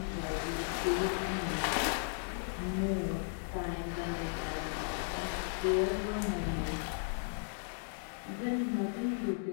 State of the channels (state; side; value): silent; right; digital silence